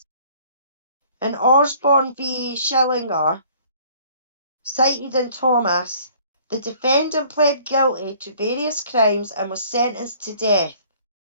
In Osborne v. Schillinger, cited in Thomas, the defendant pled guilty to various crimes and was sentenced to death.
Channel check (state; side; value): inverted; both; correlation -0.56